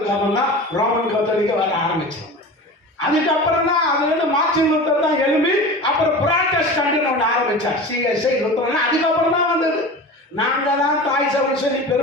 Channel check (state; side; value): normal; both; correlation 0.33